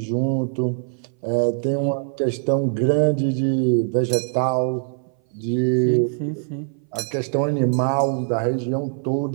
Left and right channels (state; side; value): silent; left; 58 dB below the other